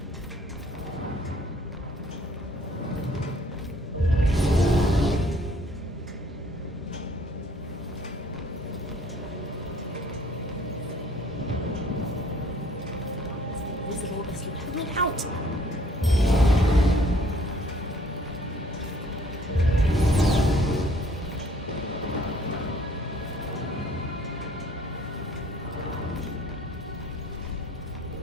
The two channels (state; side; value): normal; both; correlation 0.59